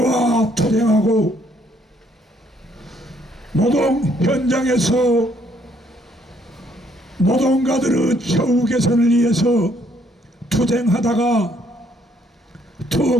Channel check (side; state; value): both; normal; correlation 0.67